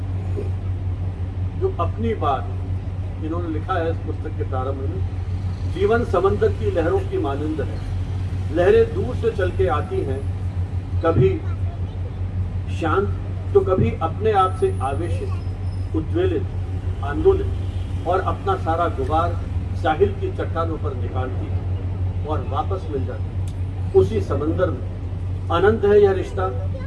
जो अपनी बात इन्होंने लिखा है इस पुस्तक के प्रारंभ में, जीवन समंदर की लहरों की मानंद है, लहरें दूर से चल के आती हैं, कभी शांत तो कभी अपने आप से आवेशित, उद्वेलित, आंदोलित, और अपना सारा गुबार साहिल की चट्टानों पर निकालती है और वापस मिल जाती है उसी समंदर में। अनंत है यह रिश्ता,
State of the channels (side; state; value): both; identical; correlation 1.00